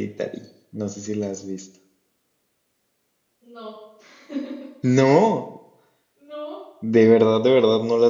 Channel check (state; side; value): identical; both; correlation 1.00